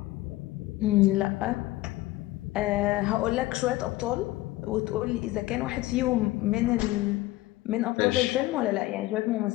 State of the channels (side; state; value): right; quieter; 18.0 dB